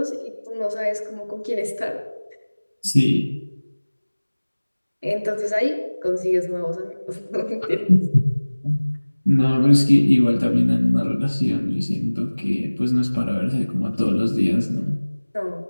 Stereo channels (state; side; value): inverted; both; correlation -1.00